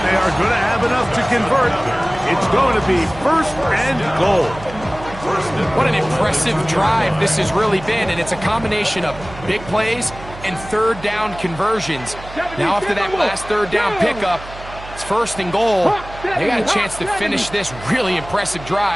they are going to have enough to convert. It's going to be 1st and goal. What an impressive drive this has really been, and it's a combination of big plays and 3rd down conversions. Now after that last 3rd down pickup, it's 1st and goal. They got a chance to finish this really impressive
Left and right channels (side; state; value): right; noise; hum, 15 dB below the sound